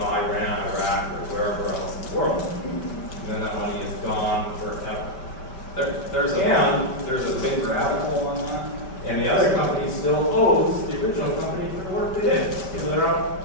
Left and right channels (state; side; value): late; right; 5.2 ms